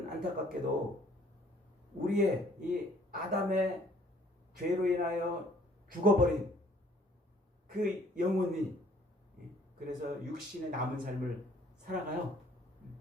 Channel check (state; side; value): normal; both; correlation 0.59